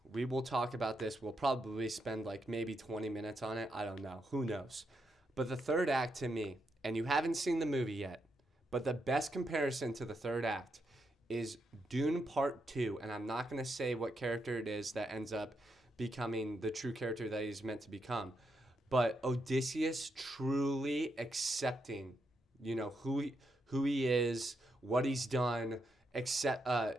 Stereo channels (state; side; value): normal; both; correlation 0.82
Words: we will talk about this. We'll probably spend like maybe 20 minutes on it. I don't know. Who knows? But the third act to me, and you haven't seen the movie yet, but the best comparison to the third act is Dune Part 2. And I'm not going to say what character it is that ends up becoming the true character that he's meant to become. But Odysseus truly accepting, who he is, what he's done,